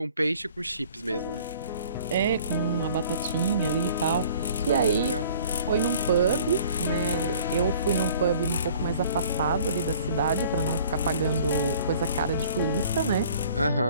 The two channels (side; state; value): both; inverted; correlation -0.52